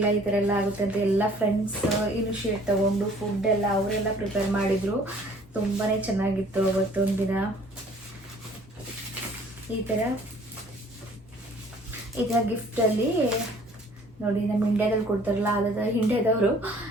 ಈ ಥರ ಎಲ್ಲ ಆಗುತ್ತೆ ಅಂತ. ಎಲ್ಲ ಫ್ರೆಂಡ್ಸ್ ಇನಿಷಿಯೇಟ್ ತೊಗೊಂಡು ಫುಡ್ ಎಲ್ಲ ಅವರೆಲ್ಲ ಪ್ರಿಪೇರ್ ಮಾಡಿದರು. ತುಂಬಾ ಚೆನ್ನಾಗಿತ್ತು ಅವತ್ತೊಂದು ದಿನ. ಈ ಥರ ಗಿಫ್ಟಲ್ಲಿ ನೋಡಿ, ನಮ್ಮ ಇಂಡಿಯಾದಲ್ಲಿ ಕೊಡ್ತಾರಲ್ಲ, ಅದಾದ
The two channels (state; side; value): normal; both; correlation 0.54